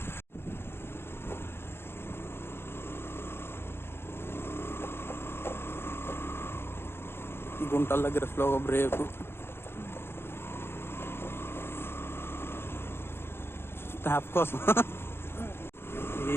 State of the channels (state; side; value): late; right; 0.11 ms